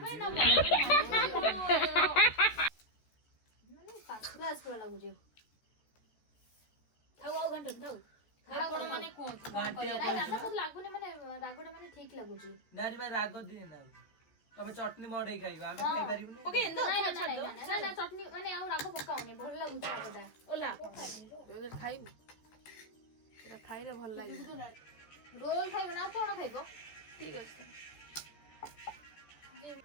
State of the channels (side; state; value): right; late; 14 ms